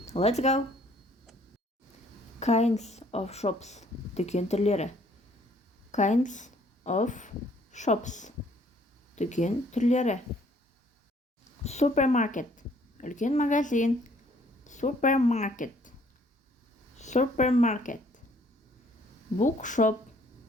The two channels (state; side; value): normal; both; correlation 0.61